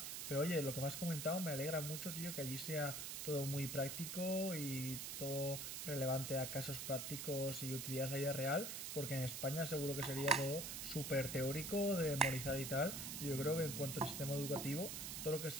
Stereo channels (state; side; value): noise; right; hiss, 5 dB below the sound